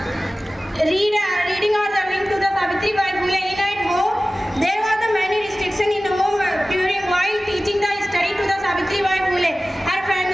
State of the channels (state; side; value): normal; both; correlation 0.97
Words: reading or the reading to the Savitribai Phule in at home, there was the many restriction in home while teaching the study to the Savitribai Phule. Her